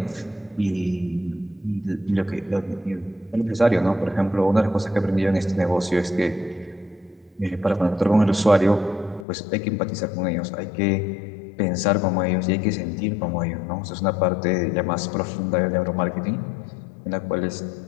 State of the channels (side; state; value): right; drops out; at 9.2 s